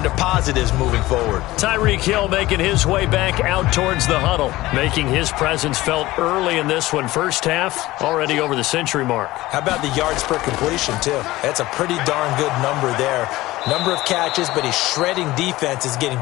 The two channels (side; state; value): right; quieter; 17.9 dB